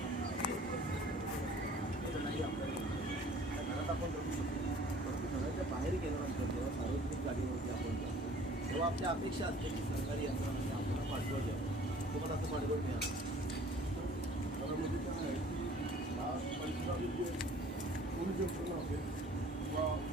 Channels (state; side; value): normal; both; correlation 0.51